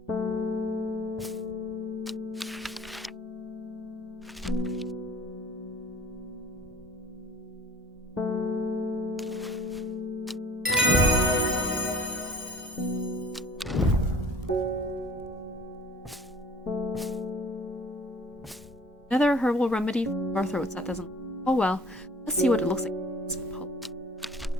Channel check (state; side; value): normal; both; correlation 0.48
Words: Another herbal remedy for sore throats that doesn't. Oh well, let's see what it looks like.